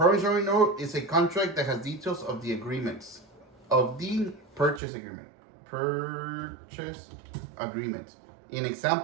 note is a contract that has details of the agreements of the purchase agreement. In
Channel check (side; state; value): left; drops out; at 4.8 s